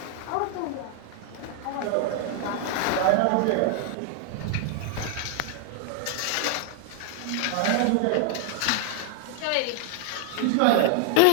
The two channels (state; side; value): different; both; correlation 0.00